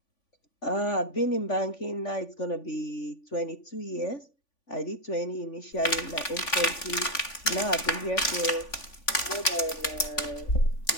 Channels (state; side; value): late; right; 3.5 ms